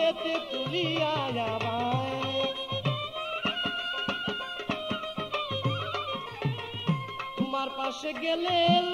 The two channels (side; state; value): both; identical; correlation 1.00